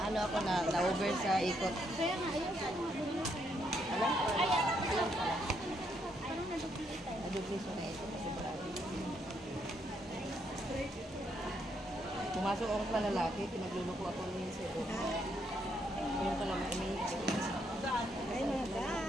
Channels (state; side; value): normal; both; correlation 0.75